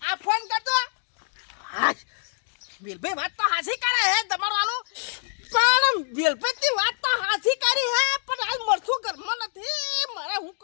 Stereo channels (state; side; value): silent; right; 61 dB below the other